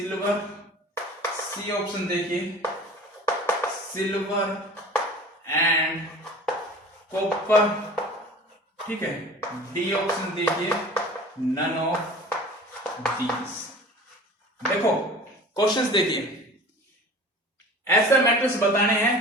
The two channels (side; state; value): both; normal; correlation 0.41